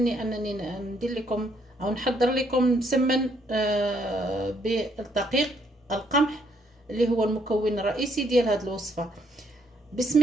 أنني ندير لكم أو نحضر لكم مسمن بالدقيق القمح اللي هو المكون الرئيسي ديال هذه الوصفة.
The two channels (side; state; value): both; normal; correlation 0.71